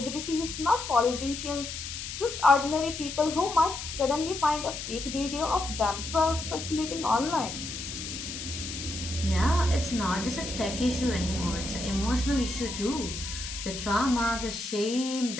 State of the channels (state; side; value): noise; left; hiss, 7 dB below the sound